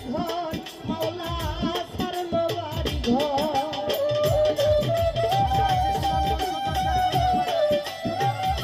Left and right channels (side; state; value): both; identical; correlation 1.00